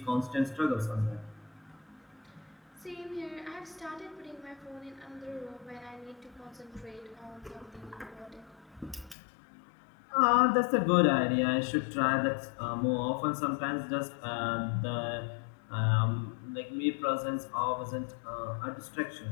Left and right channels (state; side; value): drops out; right; at 9.2 s